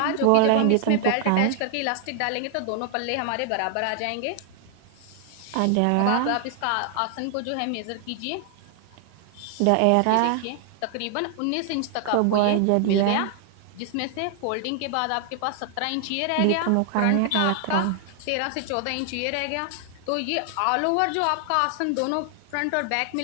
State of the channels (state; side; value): different; both; correlation 0.00